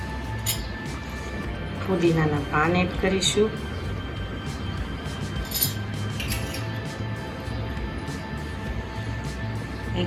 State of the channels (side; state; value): both; identical; correlation 1.00